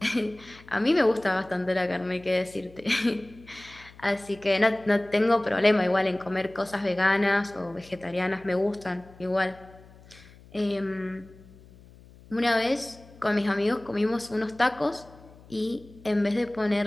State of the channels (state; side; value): noise; left; hum, 23 dB below the sound